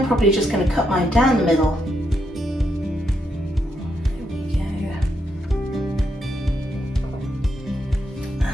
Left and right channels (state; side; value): normal; both; correlation 0.80